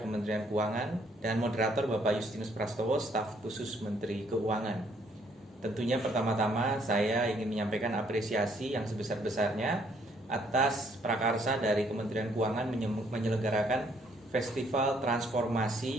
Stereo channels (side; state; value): both; normal; correlation 0.66